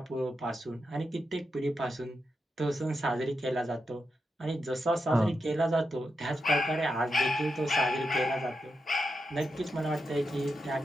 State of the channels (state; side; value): normal; both; correlation 0.87